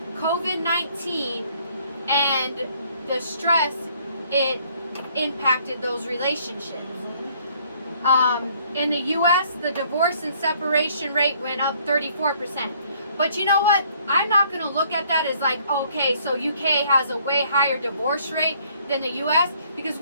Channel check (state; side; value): inverted; both; correlation -0.62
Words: COVID-19 and the stress it impacted those relationships. In the US, the divorce and separation rate went up 34%. But you know what? I'm not going to look at that as like, okay, so UK has a way higher divorce rate than the US, because